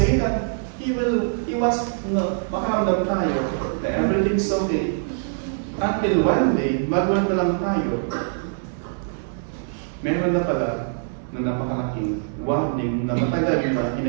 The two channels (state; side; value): silent; left; digital silence